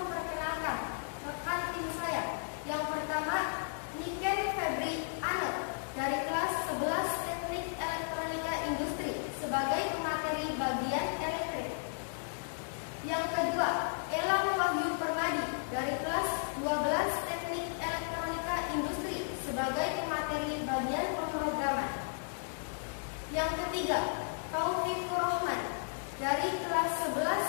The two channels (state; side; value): silent; right; 55 dB below the other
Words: rekan tim saya. Yang pertama, Niken Febri Anel dari kelas 11 Teknik Elektronika Industri sebagai pemateri bagian elektrik. Yang kedua, Elang Wahyu Permadi dari kelas 12 Teknik Elektronika Industri sebagai pemateri bagian pemrograman. Yang ketiga, Taufik Rohman dari kelas